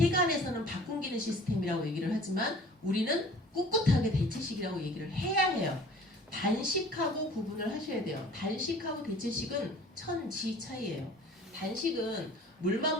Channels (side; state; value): both; normal; correlation 0.47